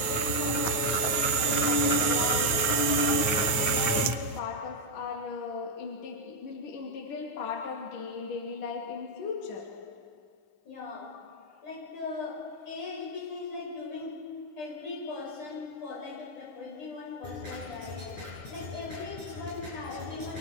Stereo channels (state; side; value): late; right; 9.5 ms